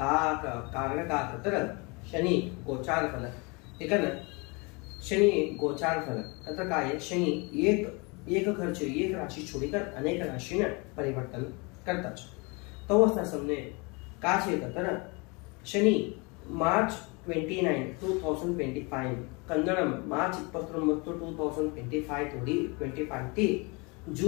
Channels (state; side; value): quieter; right; 29.0 dB